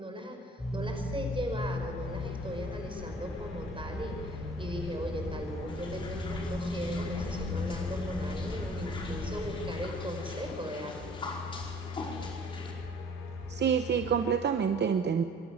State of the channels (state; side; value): normal; both; correlation 0.52